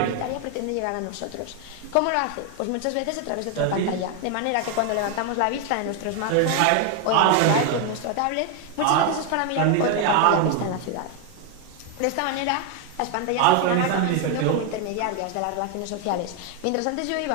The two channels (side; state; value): both; different; correlation 0.01